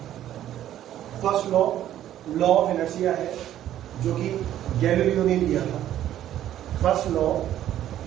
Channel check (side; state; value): left; quieter; 12.0 dB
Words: First law law of inertia है जो कि गैलीलियो ने लिया था। फर्स्ट लॉ